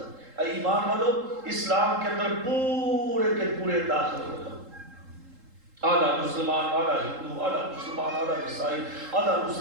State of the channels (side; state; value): left; late; 3.7 ms